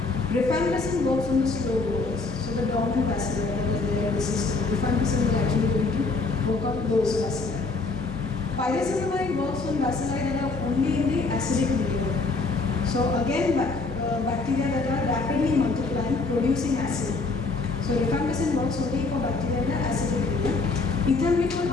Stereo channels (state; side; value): quieter; right; 3.9 dB